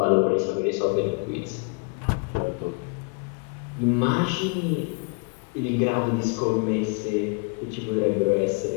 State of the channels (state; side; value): quieter; right; 34.8 dB